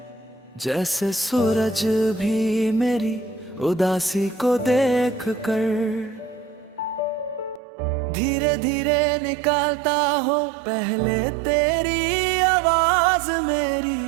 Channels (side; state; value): left; drops out; at 7.6 s